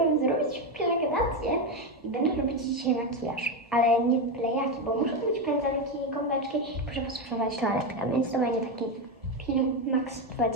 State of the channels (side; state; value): both; normal; correlation 0.11